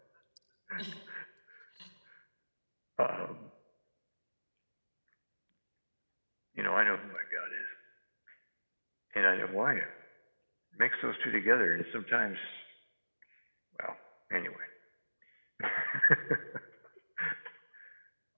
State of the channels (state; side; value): inverted; both; correlation -1.00